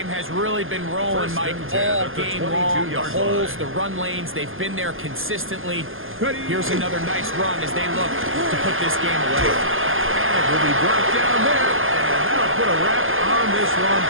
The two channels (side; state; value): left; late; 0.59 ms